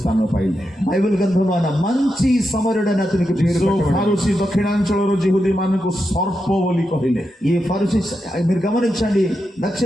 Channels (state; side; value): normal; both; correlation 0.87